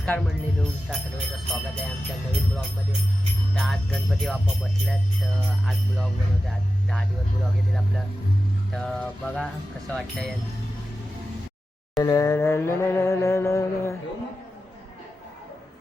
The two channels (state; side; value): normal; both; correlation 0.93